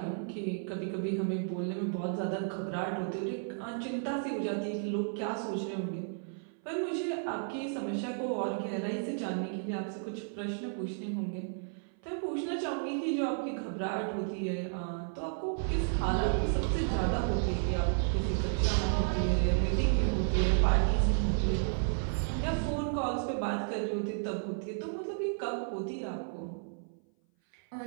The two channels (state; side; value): silent; left; 56 dB below the other